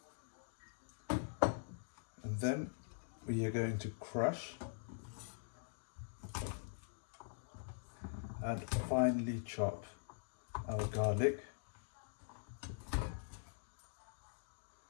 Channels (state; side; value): silent; right; digital silence